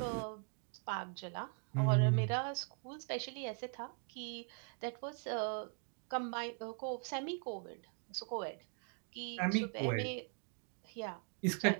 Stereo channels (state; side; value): quieter; left; 39.3 dB